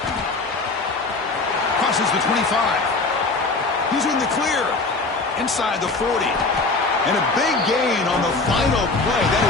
Crosses the 25. He's in the clear. Inside the 40. And a big gain on the final play. That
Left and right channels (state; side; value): quieter; right; 3.6 dB